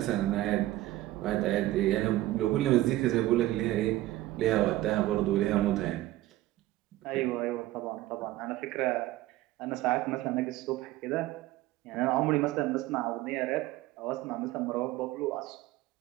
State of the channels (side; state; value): left; quieter; 16.3 dB